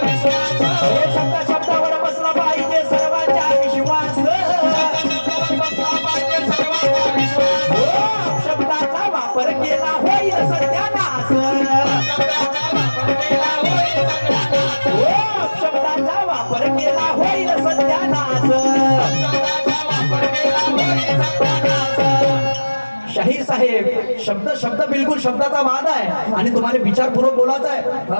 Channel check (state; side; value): inverted; both; correlation -1.00